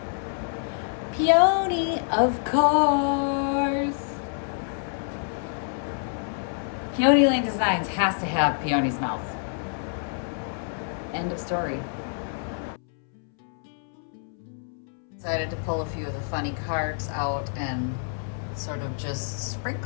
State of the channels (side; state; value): right; silent; 60 dB below the other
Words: Peony, of course. Peony Lane Designs has to have Peony's mouth. End of story. Decided to pull a few of the funny cards out and sort of just